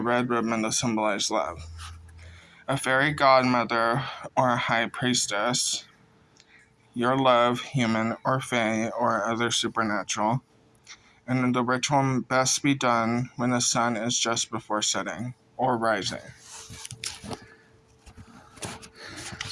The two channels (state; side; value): identical; both; correlation 1.00